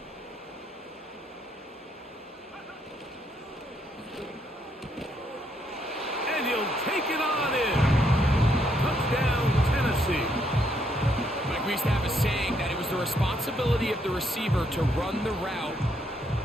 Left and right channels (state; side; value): normal; both; correlation 0.73